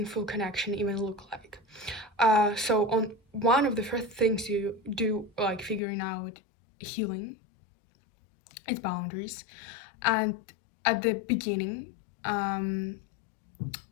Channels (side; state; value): right; drops out; at 5.8 s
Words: connection even look like. So on one of the first things you do, like figuring out healing, is boundaries. And at the beginning, um,